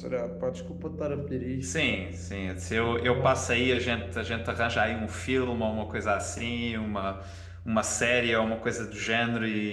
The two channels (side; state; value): both; identical; correlation 1.00